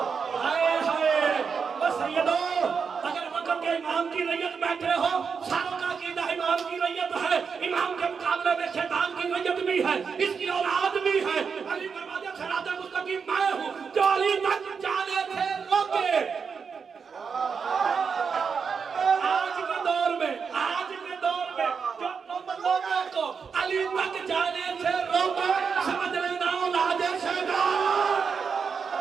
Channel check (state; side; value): quieter; left; 5.9 dB